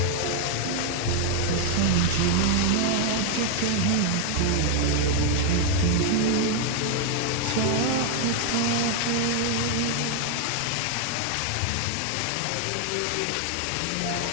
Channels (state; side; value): different; both; correlation 0.00